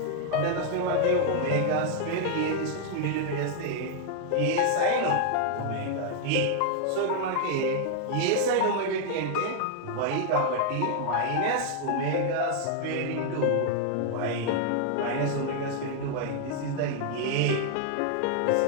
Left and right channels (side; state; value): both; different; correlation 0.00